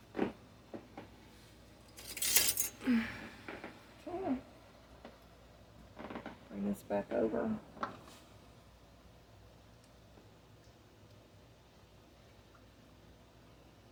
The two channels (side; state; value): both; identical; correlation 1.00